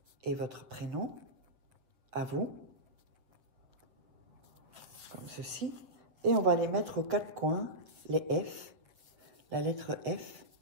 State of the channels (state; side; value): late; left; 8.1 ms